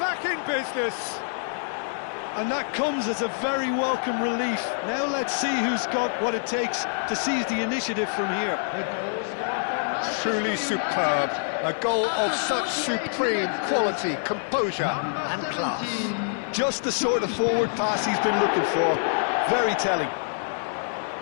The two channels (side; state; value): right; silent; digital silence